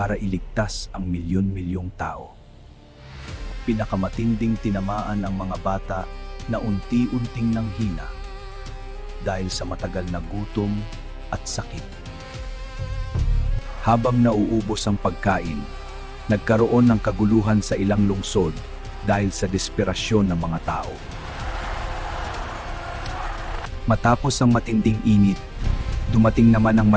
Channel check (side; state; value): both; identical; correlation 1.00